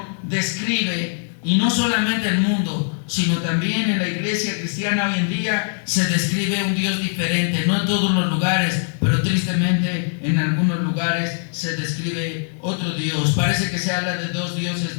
describe Y no solamente el mundo, sino también en la iglesia cristiana hoy en día se describe un Dios diferente. No en todos los lugares, pero tristemente en algunos lugares se describe otro Dios. Parece que se habla de dos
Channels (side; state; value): right; silent; digital silence